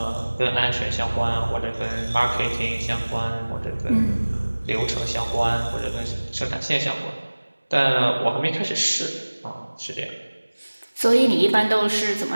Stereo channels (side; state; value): both; inverted; correlation -1.00